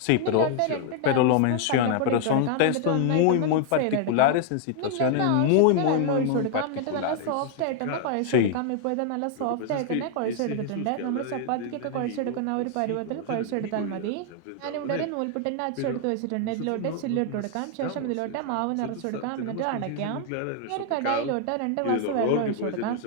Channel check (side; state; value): both; different; correlation 0.00